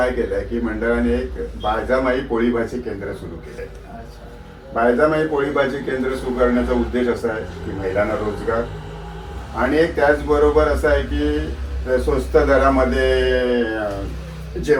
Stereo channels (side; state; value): both; identical; correlation 1.00